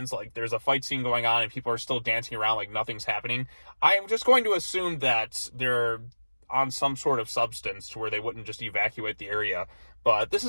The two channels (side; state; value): both; inverted; correlation -1.00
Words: like, there's a fight scene going on and people are still dancing around like nothing's happening. I am just going to assume that they're on some sort of substance to where they wouldn't just evacuate the area. But this